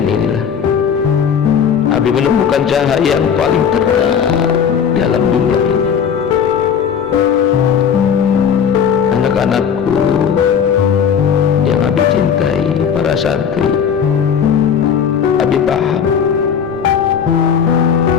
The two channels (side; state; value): right; quieter; 7.5 dB